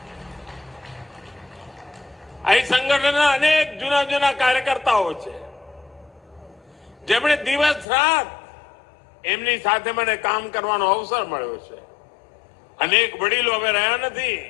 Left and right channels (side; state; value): right; drops out; at 7.9 s